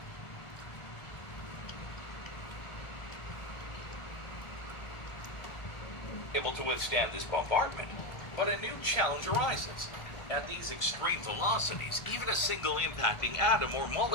able to withstand this bombardment, but a new challenge arises. At these extreme velocities, even a single impacting atom or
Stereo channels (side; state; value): right; late; 1.4 ms